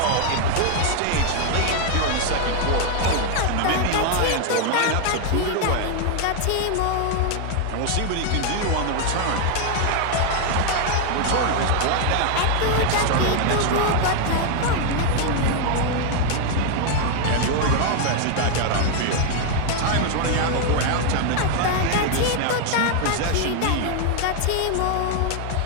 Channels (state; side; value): different; both; correlation 0.00